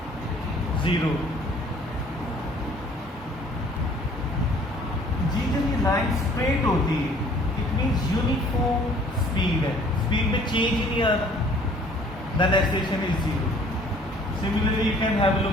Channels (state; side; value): normal; both; correlation 0.55